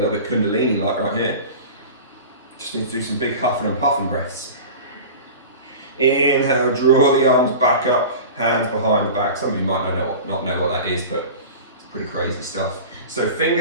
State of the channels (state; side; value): inverted; both; correlation -0.35